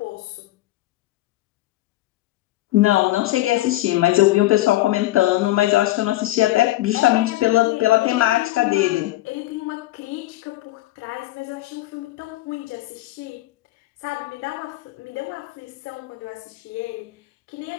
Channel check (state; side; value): quieter; right; 16.7 dB